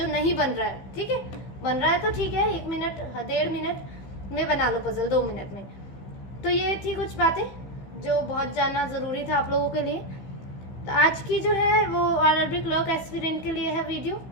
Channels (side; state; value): right; late; 15 ms